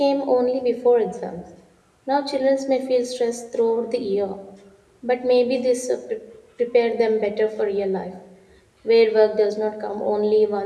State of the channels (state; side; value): identical; both; correlation 1.00